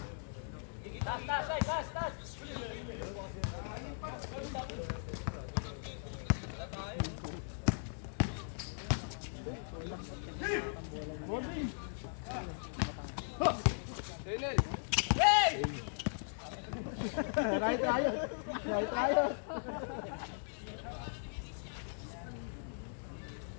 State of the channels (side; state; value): right; silent; digital silence